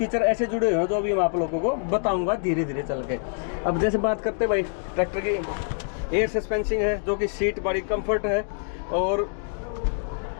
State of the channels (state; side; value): silent; right; digital silence